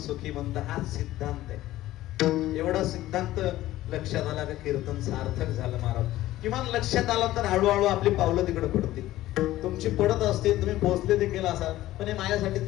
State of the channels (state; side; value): quieter; right; 15.4 dB